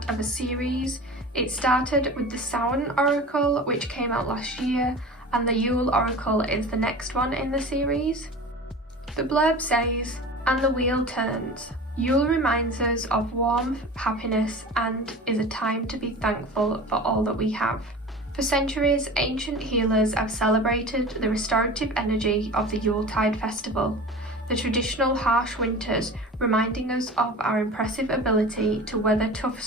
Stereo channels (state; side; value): normal; both; correlation 0.35